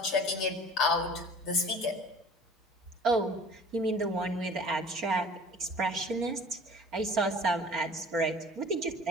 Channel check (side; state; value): both; normal; correlation 0.46